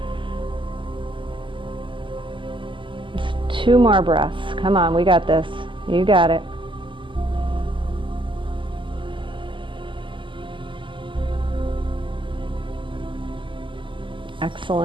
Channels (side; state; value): left; late; 0.25 ms